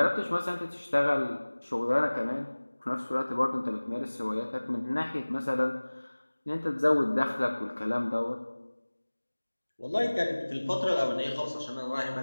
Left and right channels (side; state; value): both; inverted; correlation -1.00